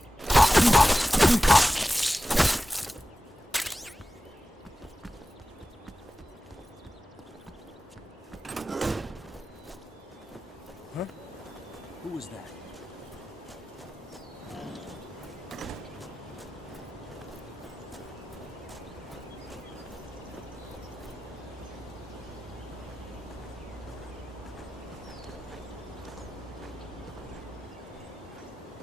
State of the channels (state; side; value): normal; both; correlation 0.95